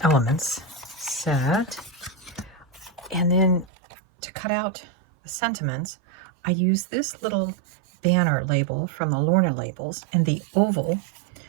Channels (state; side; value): drops out; left; at 3.7 s